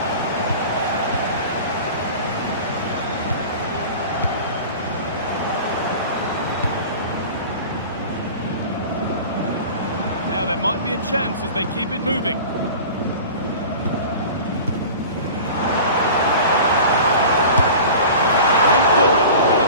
Now there might be a chance as they keep it moving. Went for it, and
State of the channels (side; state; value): both; inverted; correlation -0.38